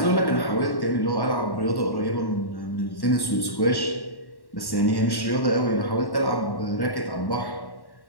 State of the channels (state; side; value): late; right; 1.1 ms